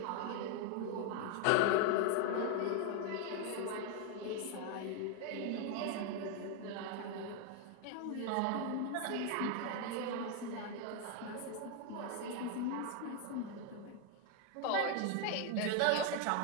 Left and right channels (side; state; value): both; different; correlation 0.01